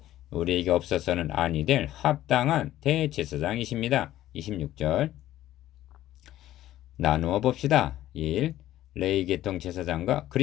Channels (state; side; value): quieter; right; 13.8 dB